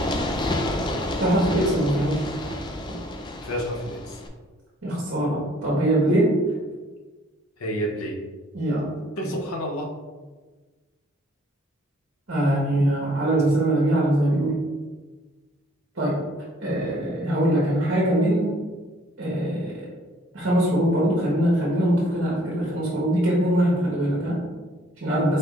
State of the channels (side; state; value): both; normal; correlation 0.60